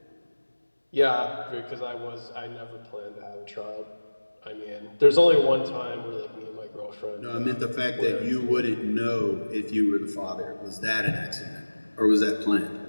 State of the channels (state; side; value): inverted; both; correlation -1.00